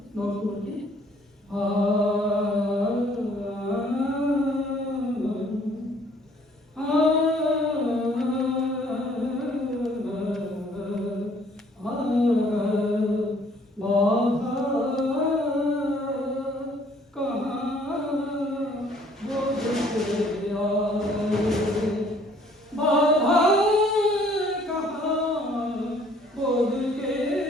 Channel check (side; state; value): both; normal; correlation 0.60